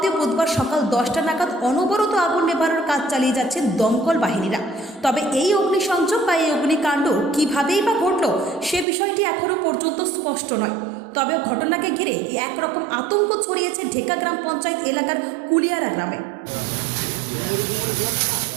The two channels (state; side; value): drops out; left; at 8.8 s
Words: বুধবার সকাল 10টা নাগাদ অনবরত আগুন নেভানোর কাজ চালিয়ে যাচ্ছেন দমকল বাহিনীরা। তবে এই অগ্নিসংযোগ বা এই অগ্নিকাণ্ড কীভাবেই বা ঘটল সে বিষয়টি এখনও পর্যন্ত স্পষ্ট নয়। তবে ঘটনাকে ঘিরে একরকম আতঙ্ক ছড়িয়েছে ঢেকা গ্রাম পঞ্চায়েত এলাকার কুলিয়ারা গ্রামে।